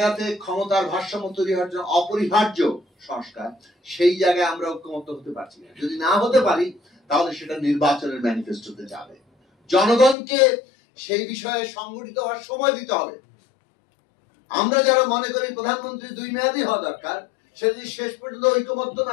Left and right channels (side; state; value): right; drops out; at 10.2 s